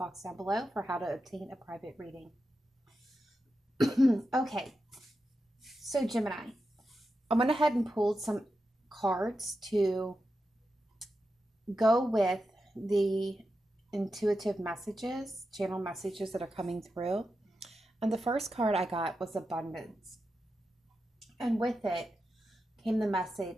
down below for how to obtain a private reading. Okay, so Gemini, I went ahead and pulled some cards to go with the intuitive messages, channel messages that are coming through. And the first card I got was abundance. And with it came the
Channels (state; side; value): normal; both; correlation 0.89